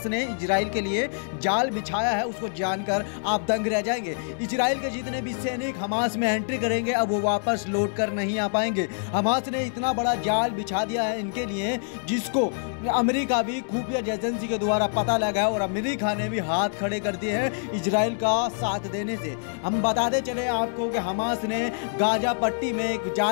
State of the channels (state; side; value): silent; right; 61 dB below the other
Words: ने इजराइल के लिए जाल बिछाया है उसको जानकर आप दंग रह जाएंगे। इजराइल के जितने भी सैनिक हमास में एंट्री करेंगे अब वो वापस लौट कर नहीं आ पाएंगे। हमास ने इतना बड़ा जाल बिछा दिया है इनके लिए, जिसको अमेरिका भी खुफिया एजेंसी के द्वारा पता लगा है और अमेरिका ने भी हाथ खड़े कर दिए हैं इजराइल का साथ देने से। हम बताते चले आपको कि हमास ने गाजा पट्टी में एक